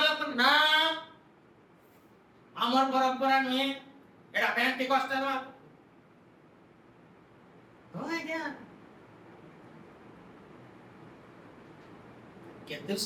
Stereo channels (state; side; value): identical; both; correlation 1.00